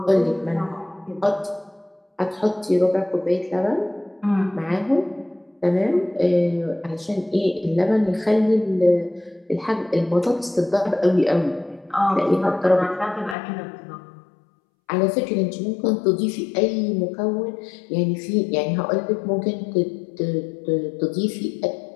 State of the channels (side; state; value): right; drops out; at 13.4 s